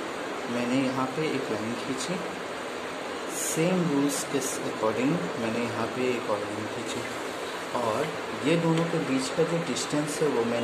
मैंने यहाँ पे एक लाइन खींची, सेम रूल्स के अकॉर्डिंग मैंने यहाँ पे एक और लाइन खींची और ये दोनों के बीच का जो डिस्टेंस है वो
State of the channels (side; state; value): both; identical; correlation 1.00